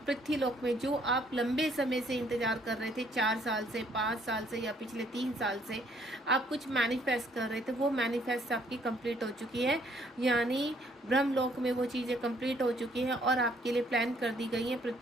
लोक में जो आप लंबे समय से इंतजार कर रहे थे, 4 साल से, 5 साल से या पिछले 3 साल से आप कुछ मैनिफेस्ट कर रहे थे, वो मैनिफेस्ट आपकी कंप्लीट हो चुकी है। यानी ब्रह्मलोक में वो चीज़ें कंप्लीट हो चुकी हैं और आपके लिए प्लान कर दी गई हैं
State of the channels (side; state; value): both; normal; correlation 0.65